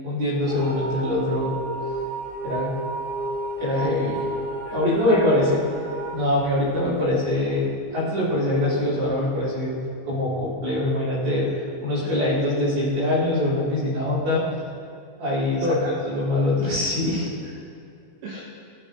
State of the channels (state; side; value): late; left; 22 ms